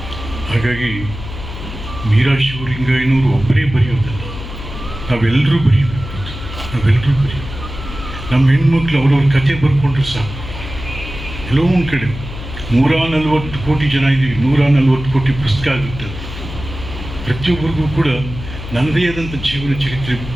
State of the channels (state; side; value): noise; left; hum, 10 dB below the sound